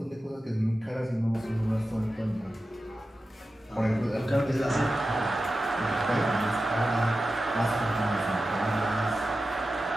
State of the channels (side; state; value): both; normal; correlation 0.93